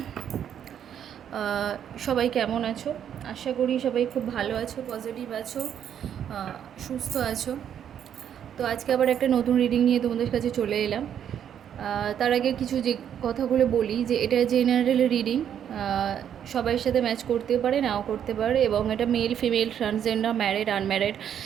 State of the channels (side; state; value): left; quieter; 9.2 dB